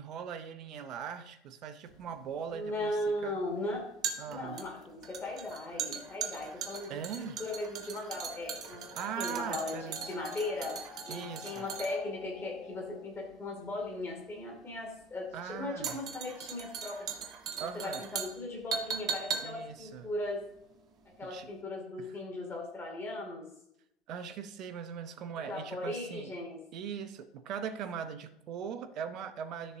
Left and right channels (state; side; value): normal; both; correlation 0.46